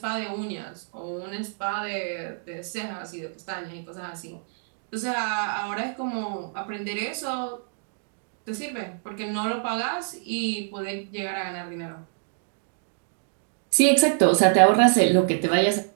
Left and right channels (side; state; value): left; silent; digital silence